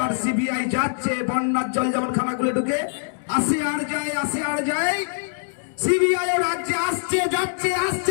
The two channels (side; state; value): right; silent; digital silence